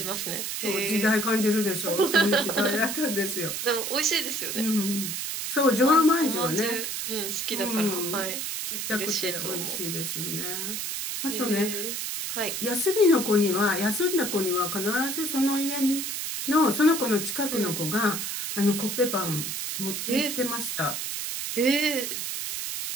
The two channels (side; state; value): right; noise; hiss, 3 dB below the sound